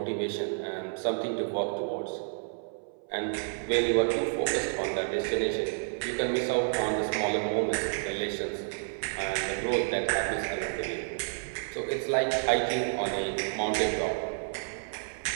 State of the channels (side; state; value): left; silent; 57 dB below the other